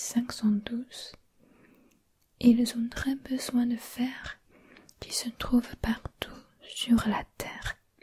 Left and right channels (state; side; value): identical; both; correlation 1.00